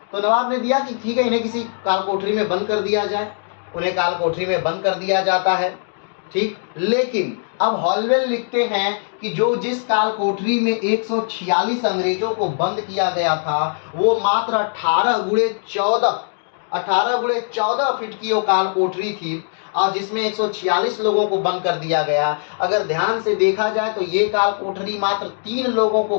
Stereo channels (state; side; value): silent; right; digital silence